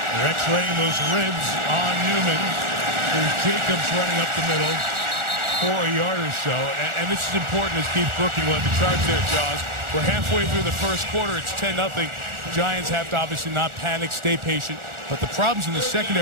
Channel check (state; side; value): late; left; 1.4 ms